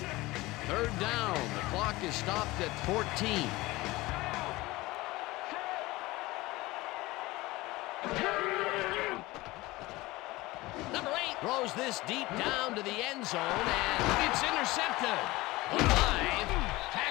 3rd down. The clock is stopped at 14. Number 8 throws this deep down to the end zone, and it's intercepted. Alive,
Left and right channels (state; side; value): quieter; right; 20.1 dB